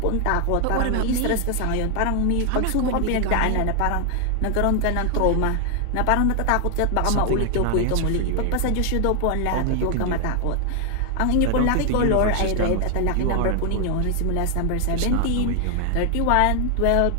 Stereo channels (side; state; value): both; different; correlation 0.00